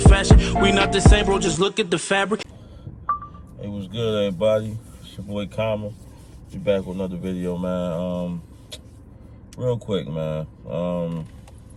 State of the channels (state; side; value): identical; both; correlation 1.00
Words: We not the same, bro, just look at the fabric. Hey, what's good, everybody? It's your boy Kama. Be back with another video, man. Real quick, man.